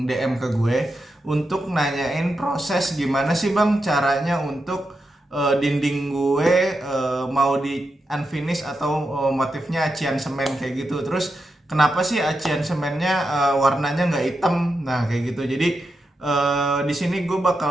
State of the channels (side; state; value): both; normal; correlation 0.87